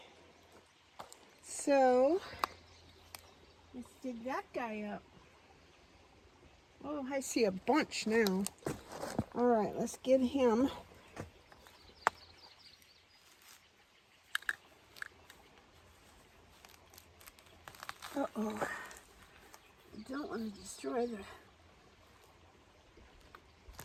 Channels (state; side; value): identical; both; correlation 1.00